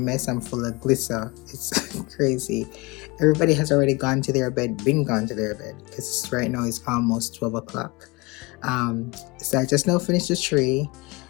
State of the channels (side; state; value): right; quieter; 25.0 dB